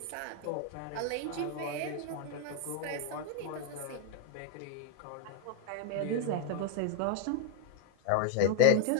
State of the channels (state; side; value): different; both; correlation 0.00